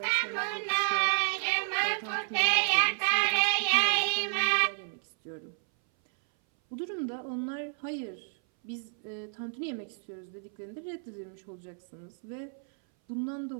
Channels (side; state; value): left; silent; 57 dB below the other